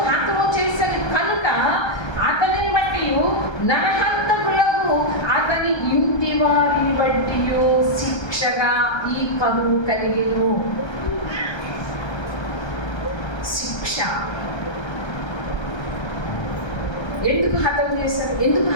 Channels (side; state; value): right; late; 1.3 ms